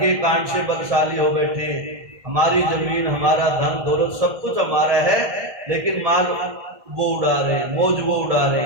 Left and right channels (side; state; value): left; late; 1.6 ms